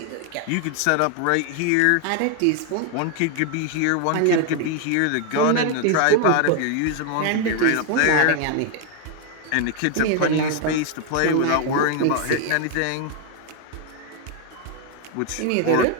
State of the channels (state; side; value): different; both; correlation 0.01